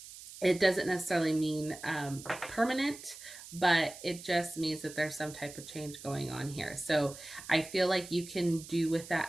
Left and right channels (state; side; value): noise; right; hiss, 15 dB below the sound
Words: It doesn't necessarily mean permanent, but it just means that there's some type of change going on here. So I feel like you can do with